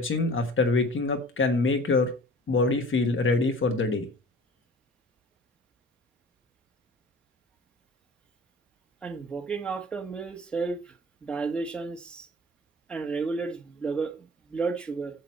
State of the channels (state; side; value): normal; both; correlation 0.44